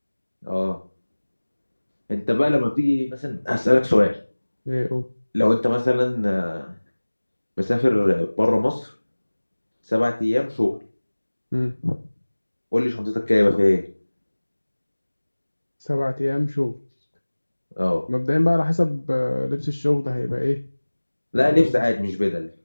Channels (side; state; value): both; inverted; correlation -1.00